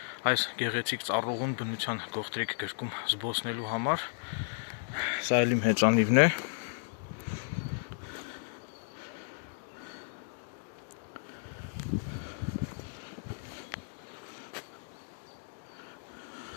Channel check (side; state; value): right; silent; digital silence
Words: այս գեղեցիկ ծառուղուն բնության գողտրիկ գրկում զբոսնելու համար, սա էլ իմ հեծանիվն է,